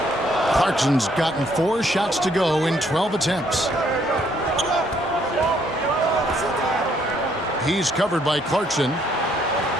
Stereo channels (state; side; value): normal; both; correlation 0.68